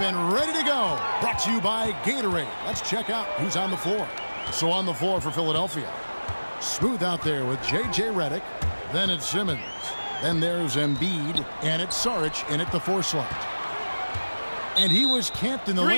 and ready to go. Brought to you by Gatorade. Let's check out who's on the floor. So on the floor for Philadelphia. Smooth out there with J.J. Redick. Then it's Simmons. Then there's Embiid. And it's Saric in at the 4 slot. And he was camped in the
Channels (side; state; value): both; inverted; correlation -1.00